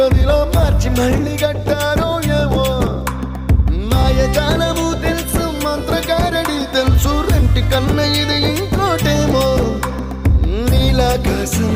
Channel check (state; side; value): identical; both; correlation 1.00